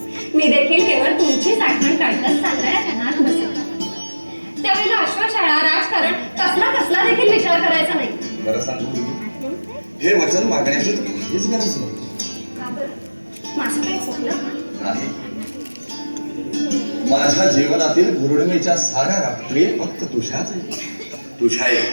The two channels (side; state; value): both; inverted; correlation -1.00